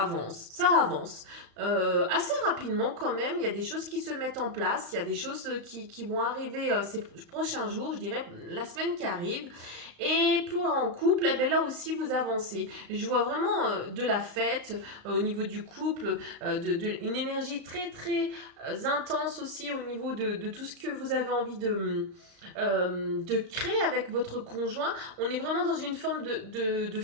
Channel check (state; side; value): late; left; 35 ms